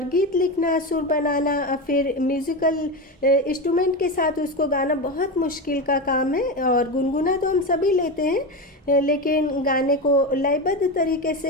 गीत लिखना, सुर बनाना, फिर म्यूज़िकल इंस्ट्रूमेंट के साथ उसको गाना बहुत मुश्किल का काम है। और गुनगुना तो हम सभी लेते हैं, लेकिन गाने को लयबद्ध तरीके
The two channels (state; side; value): normal; both; correlation 0.18